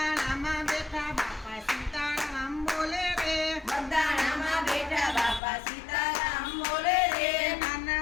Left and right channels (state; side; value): drops out; right; at 5.4 s